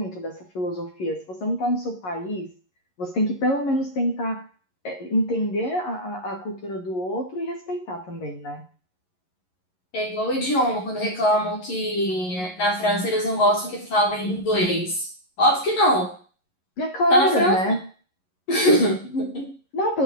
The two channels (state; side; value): late; right; 11 ms